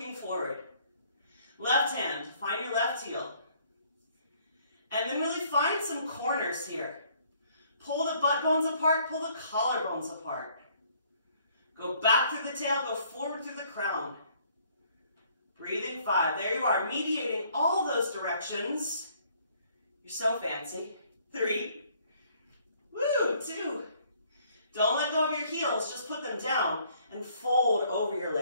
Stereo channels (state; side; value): inverted; both; correlation -0.63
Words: forward. Left hand, find your left heel. And then really find some corners here. Pull the butt bones apart, pull the collarbones apart. Go back through the tail, go forward through the crown. Breathing 5. There you are, mediating all those directions. You're so fancy. 3. Woo, 2. Don't let go of your heels, just put them down and fold over your